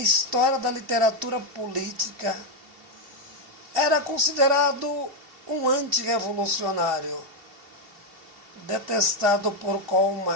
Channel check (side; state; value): left; late; 2.7 ms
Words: da literatura política, era considerado um antirrevolucionário, detestado por Karl